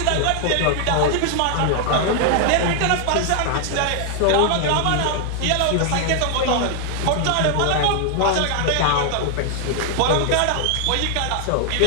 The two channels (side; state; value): both; different; correlation 0.00